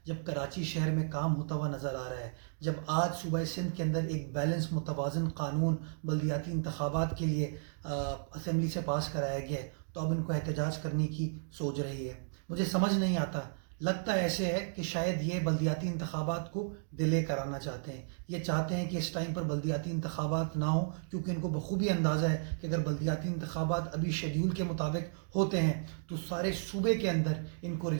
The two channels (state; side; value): silent; left; digital silence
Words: جب کراچی شہر میں کام ہوتا ہوا نظر آ رہا ہے، جب آج صوبہ سندھ کے اندر ایک بیلنس متوازن قانون بلدیاتی انتخابات کے لیے اسمبلی سے پاس کرایا گیا ہے تو اب ان کو احتجاج کرنے کی سوچ رہی ہے۔ مجھے سمجھ نہیں آتا، لگتا ایسے ہے کہ شاید یہ بلدیاتی انتخابات کو ڈیلے کرانا چاہتے ہیں۔ یہ چاہتے ہیں کہ اس ٹائم پر بلدیاتی انتخابات نہ ہوں، کیونکہ ان کو بخوبی اندازہ ہے کہ اگر بلدیاتی انتخابات ابھی شیڈیول کے مطابق ہوتے ہیں تو سارے صوبے کے اندر ان کو